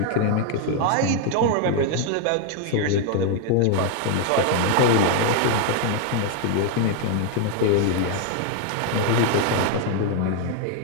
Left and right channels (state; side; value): different; both; correlation 0.00